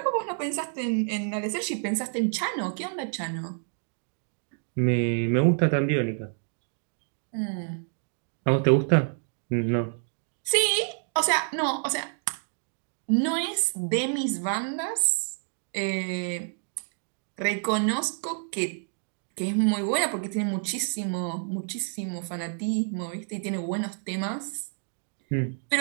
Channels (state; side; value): silent; left; 59 dB below the other